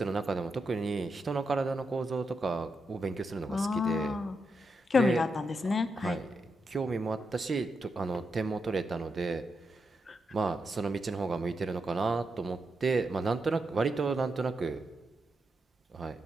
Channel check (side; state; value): both; normal; correlation 0.84